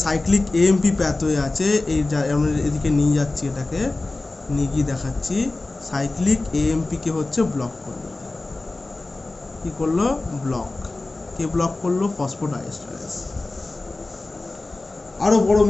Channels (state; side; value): quieter; right; 3.1 dB